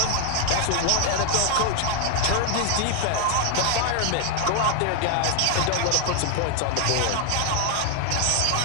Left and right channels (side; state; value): both; different; correlation 0.00